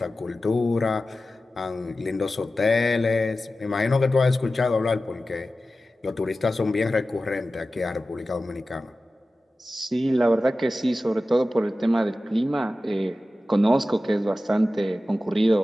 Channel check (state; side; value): normal; both; correlation 0.94